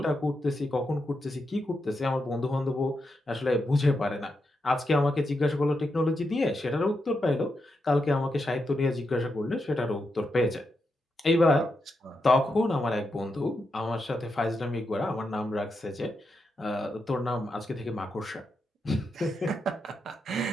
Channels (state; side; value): normal; both; correlation 0.85